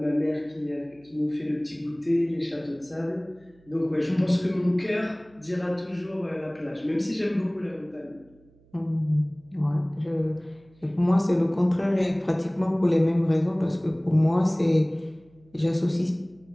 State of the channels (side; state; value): right; noise; hum, 30 dB below the sound